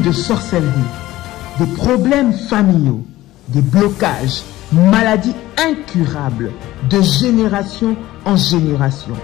de sorcellerie, de problèmes familiaux, des blocages, maladies incurables, de génération en génération.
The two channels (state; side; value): quieter; right; 16.3 dB